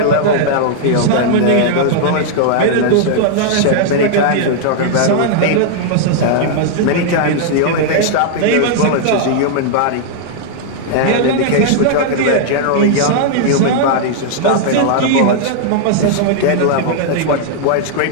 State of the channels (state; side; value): different; both; correlation -0.01